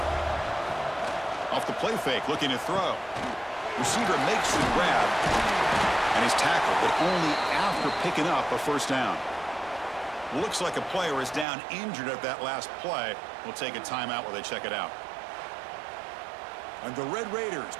Off the play fake, looking to throw. Receiver makes the grab, and he's tackled, but only after picking up a 1st down. Looks like a player is down injured at that last play. We'll take a timeout while they check it out. And the Red Raiders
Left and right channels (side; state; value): left; drops out; at 11.5 s